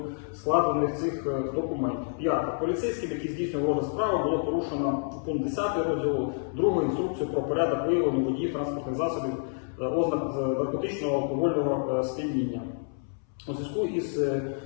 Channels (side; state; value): right; silent; 59 dB below the other